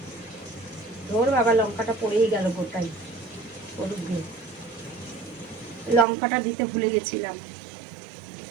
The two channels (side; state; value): left; drops out; at 6.1 s